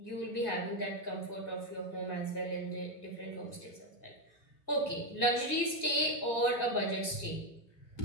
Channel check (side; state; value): right; late; 1.8 ms